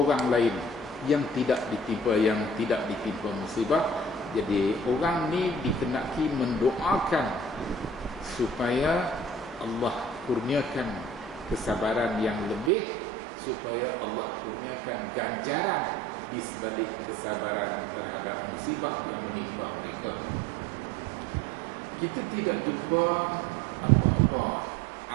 lain yang tidak ditimpa musibah. Jadi orang ni dikenaki mendoakan supaya Allah kurniakan kesabaran yang lebih, supaya Allah kurniakan ganjaran di sebalik kesabaran terhadap musibah yang menimpa mereka. Kita tidak jumpa apa-apa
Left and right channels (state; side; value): drops out; left; at 12.7 s